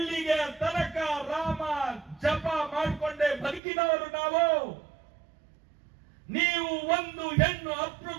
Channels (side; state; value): left; drops out; at 3.6 s